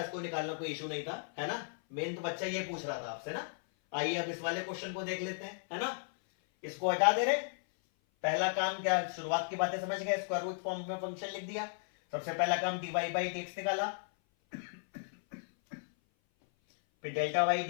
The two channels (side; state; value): right; silent; 54 dB below the other